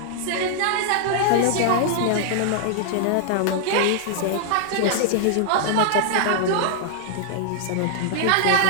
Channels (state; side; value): different; both; correlation -0.01